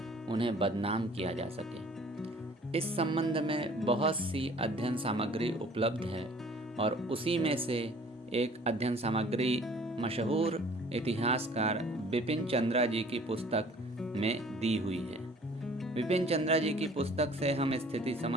उन्हें बदनाम किया जा सके। इस संबंध में बहुत सी अध्ययन सामग्री उपलब्ध है और उसी में से एक अध्ययन सामग्री मशहूर इतिहासकार बिपिन चंद्रा जी की पुस्तक में दी हुई है। बिपिन चंद्रा जी की पुस्तक से हम स्थिति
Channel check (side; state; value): both; normal; correlation 0.52